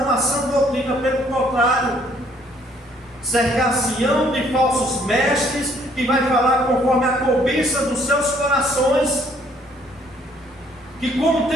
a sã doutrina, pelo contrário, cercar-se-ão de falsos mestres, que vai falar conforme a cobiça dos seus corações, que como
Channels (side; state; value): both; normal; correlation 0.63